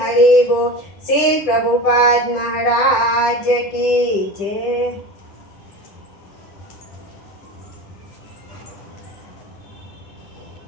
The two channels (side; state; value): right; late; 9.9 ms